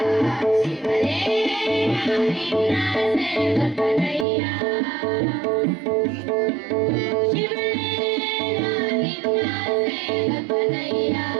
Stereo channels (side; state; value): left; drops out; at 4.2 s